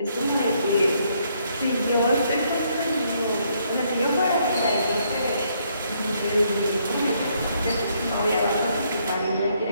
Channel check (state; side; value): inverted; both; correlation -0.71